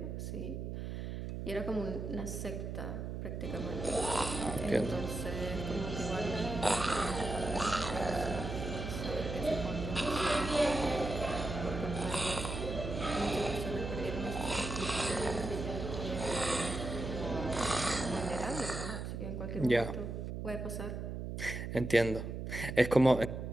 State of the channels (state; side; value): noise; right; hum, 5 dB below the sound